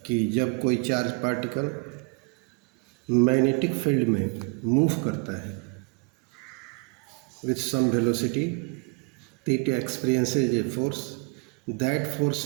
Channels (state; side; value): quieter; left; 33.5 dB